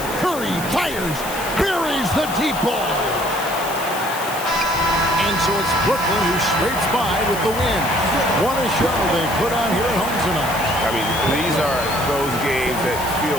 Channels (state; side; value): noise; left; hiss, 11 dB below the sound